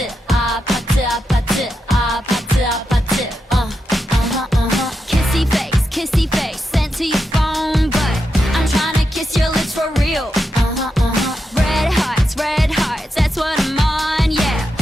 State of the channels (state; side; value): normal; both; correlation 0.87